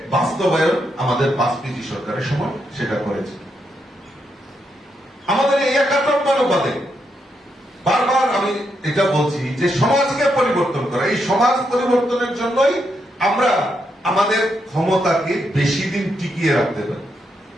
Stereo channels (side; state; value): both; normal; correlation 0.80